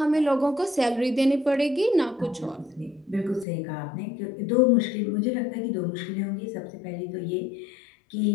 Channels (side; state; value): right; drops out; at 3.5 s